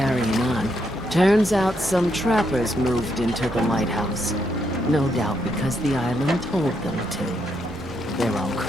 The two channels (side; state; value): both; normal; correlation 0.77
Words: on. Turns out some trappers moved into the lighthouse. No doubt because the island told them to. They're all